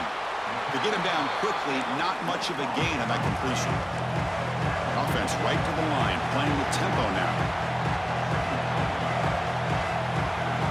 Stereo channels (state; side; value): identical; both; correlation 1.00